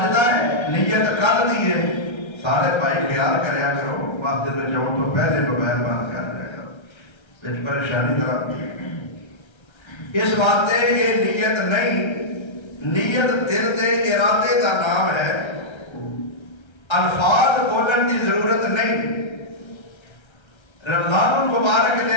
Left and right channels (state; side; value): late; right; 1.3 ms